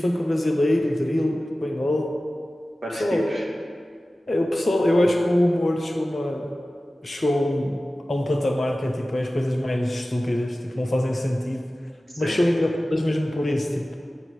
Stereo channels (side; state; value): both; normal; correlation 0.96